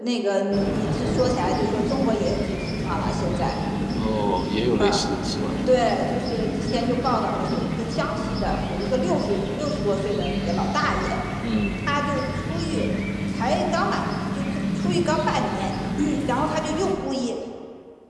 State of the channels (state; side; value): identical; both; correlation 1.00